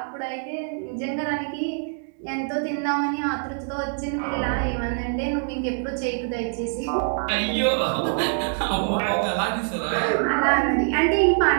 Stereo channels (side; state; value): left; silent; 62 dB below the other